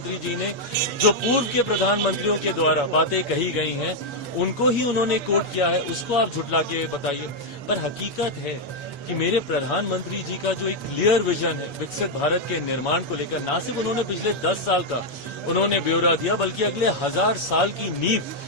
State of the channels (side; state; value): right; late; 7.1 ms